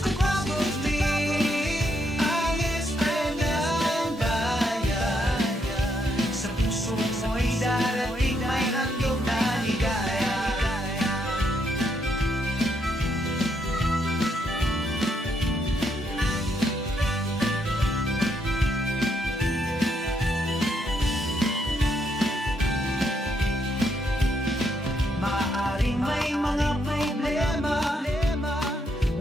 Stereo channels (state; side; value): normal; both; correlation 0.76